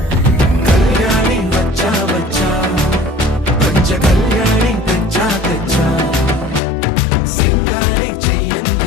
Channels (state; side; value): drops out; right; at 6.6 s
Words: కళ్యాణి వచ్చా వచ్చా పంచ కళ్యాణి తెచ్చా తెచ్చా సింగారి